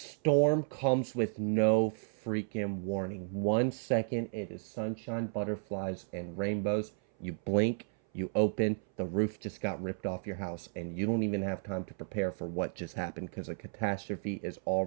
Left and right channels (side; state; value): left; silent; 56 dB below the other